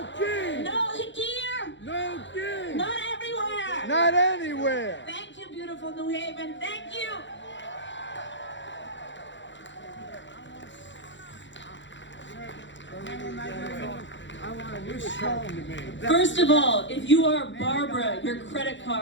king! No here! No king! Not everywhere! Not anywhere! Thank you, beautiful New Haven. Thank you! First of all, if you are Barbara, your credit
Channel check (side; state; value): right; late; 0.54 ms